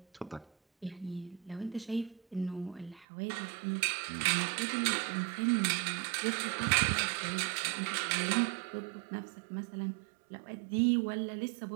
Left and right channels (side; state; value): left; drops out; at 3.1 s